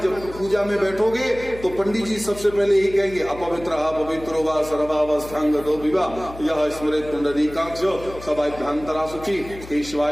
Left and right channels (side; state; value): left; noise; hum, 16 dB below the sound